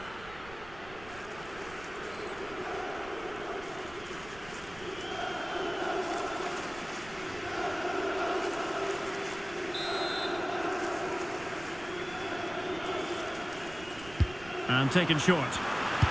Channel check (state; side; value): noise; right; rumble, 17 dB below the sound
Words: And taken short.